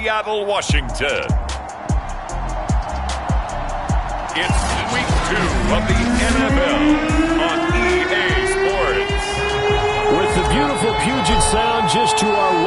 Washington, it's week 2 of the NFL on EA Sports. With the beautiful Puget Sound just to our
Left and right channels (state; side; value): identical; both; correlation 1.00